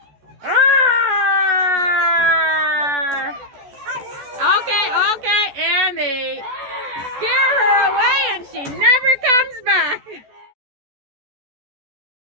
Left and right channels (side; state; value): left; late; 14 ms